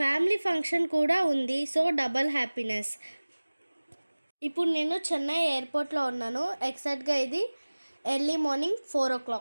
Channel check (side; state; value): both; inverted; correlation -1.00